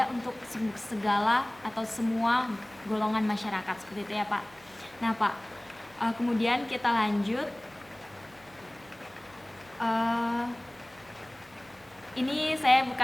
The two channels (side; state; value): right; noise; hum, 27 dB below the sound